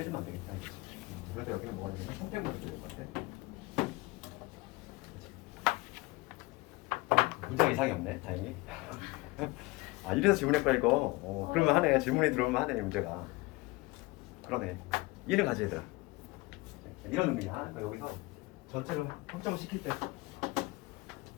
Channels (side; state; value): right; quieter; 22.8 dB